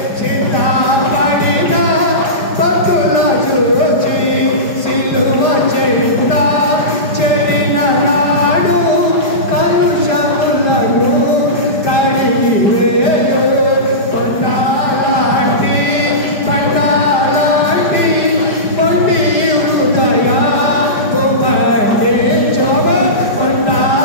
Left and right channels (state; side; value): late; right; 5.0 ms